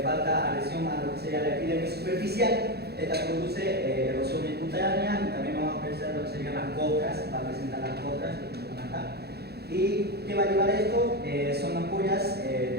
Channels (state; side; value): late; left; 0.47 ms